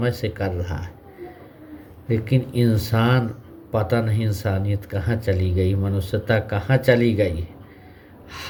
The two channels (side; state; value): both; identical; correlation 1.00